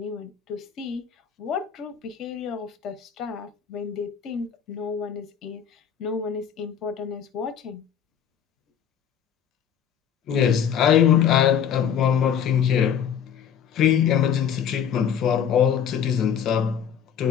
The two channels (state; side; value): quieter; right; 8.4 dB